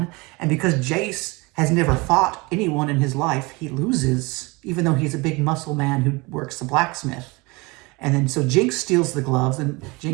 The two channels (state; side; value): quieter; left; 25.5 dB